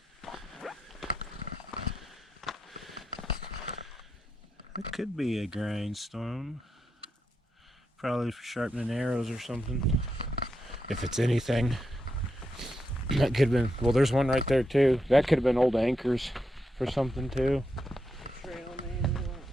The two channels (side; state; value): both; normal; correlation 0.84